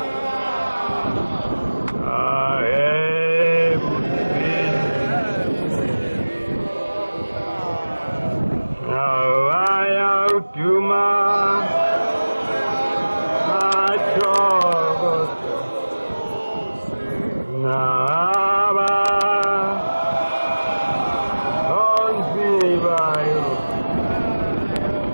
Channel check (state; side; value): inverted; both; correlation -1.00